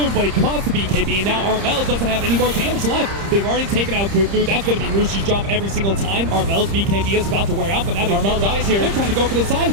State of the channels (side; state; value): left; late; 30 ms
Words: but he caught the BKB, and now Armel doesn't have any more damage left. They've already taken out Cuckoo. That's gonna be Mushi's job every single time. Armel's BKB is about to wear out, but now Armel dies here. They're trying to go for the